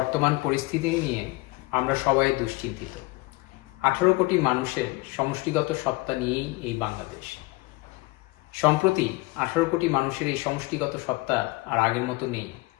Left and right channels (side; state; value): right; quieter; 22.8 dB